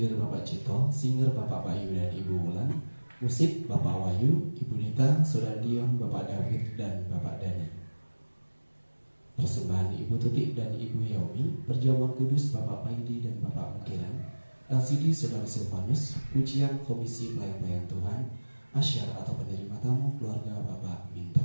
Bapak Cito, singer Bapak Bayu dan Ibu Wulan, musik Bapak Wahyu, Ibu Nita, Saudara Dion, Bapak David dan Bapak Dani. Persembahan Ibu Tutik dan Ibu Yaumi, perjamuan kudus Bapak Paidi dan Bapak Mukiran, LCD Saudara Silvanus, pujian Komisi Pelayan-Pelayan Tuhan, asyar atau penerima tamu keluarga Bapak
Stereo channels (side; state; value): both; inverted; correlation -1.00